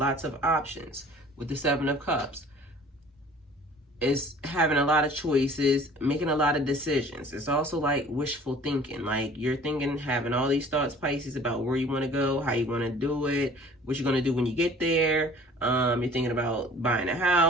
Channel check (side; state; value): both; normal; correlation 0.49